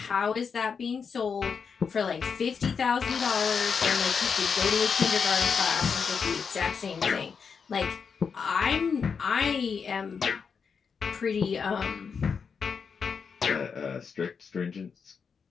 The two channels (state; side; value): quieter; right; 6.0 dB